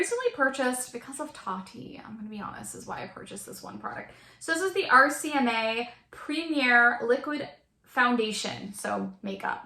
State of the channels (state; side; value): identical; both; correlation 1.00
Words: purchased, because of Tati, I'm going to be honest, is why I purchased this one product. So this is the Rcma Premier Liquid Foundation, so makeup,